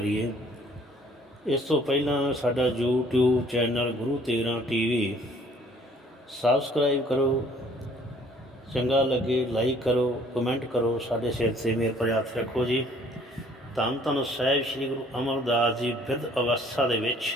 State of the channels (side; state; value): both; normal; correlation 0.58